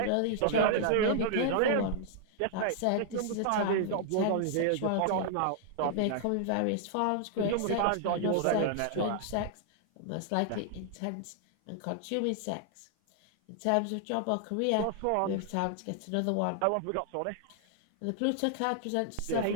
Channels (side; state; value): both; different; correlation 0.00